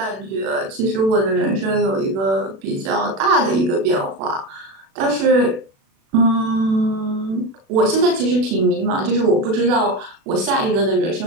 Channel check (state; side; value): late; left; 36 ms